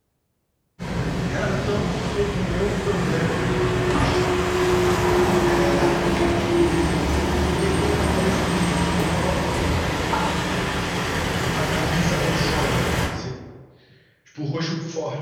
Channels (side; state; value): both; identical; correlation 1.00